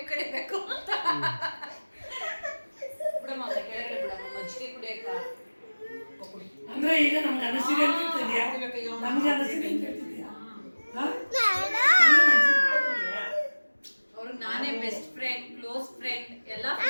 ಕಡಿಬೇಕು ಅಂತ. ಬಿಡಮ್ಮ ಕೆಳಗಡೆ ಬಿಡಮ್ಮ ಮಜ್ಜಿಗೆ ಕುಡಿಯಕ್ಕ. ಅಂದ್ರೆ ಈಗ ನಮ್ಗೆ ಅನಿಸಿದೆ ಅಂತ ಹೇಳ್ತಿದ್ಯಾ? ನಮ್ಗೆ ಅನಿಸಿದೆ ಅಂತ ಹೇಳ್ತಿದ್ಯಾ? ಅವ್ರಿಗೆ ನಾನೇ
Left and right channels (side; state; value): both; inverted; correlation -1.00